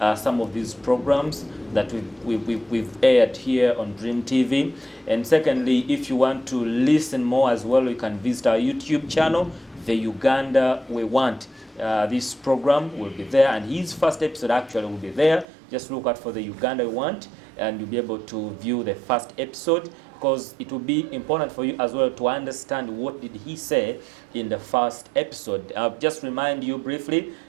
some of these programs that we've aired here on Dream TV. And secondly, if you want to listen more as well, you can visit our YouTube channel, the Uganda we want. This program will be there, and his first episode actually will be there. Just look out for the Uganda we want, and you'll be able to view the first episode, because it will be important for you as well to understand what did he say in the first episode. I'll just remind you briefly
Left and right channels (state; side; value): drops out; left; at 15.5 s